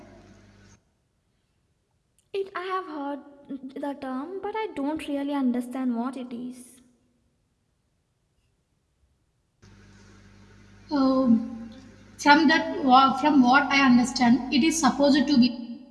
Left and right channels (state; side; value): identical; both; correlation 1.00